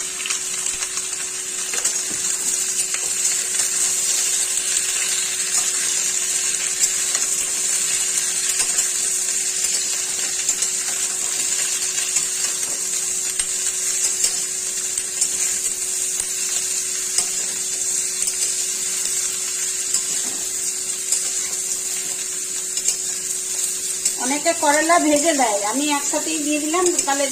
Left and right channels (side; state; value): both; identical; correlation 1.00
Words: অনেকে করলা ভেজে দেয়, আমি একসাথেই দিয়ে দিলাম, তাহলে